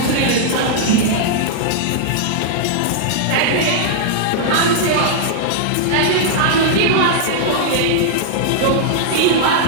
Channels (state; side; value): different; both; correlation -0.01